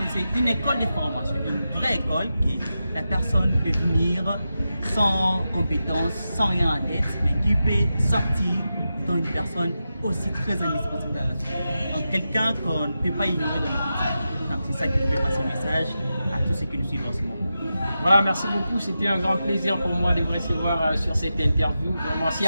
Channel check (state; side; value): inverted; both; correlation -0.90